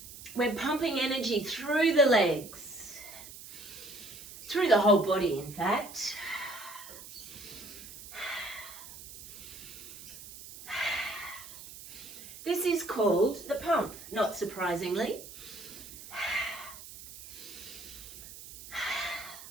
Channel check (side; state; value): right; noise; hiss, 14 dB below the sound